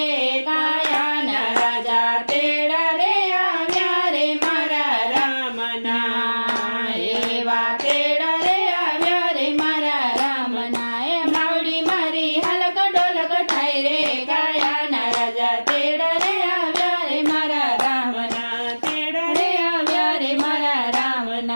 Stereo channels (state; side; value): inverted; both; correlation -1.00